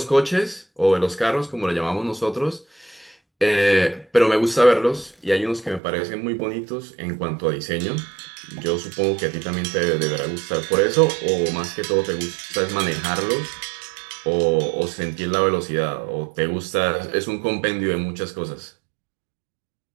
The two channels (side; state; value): left; drops out; at 5.8 s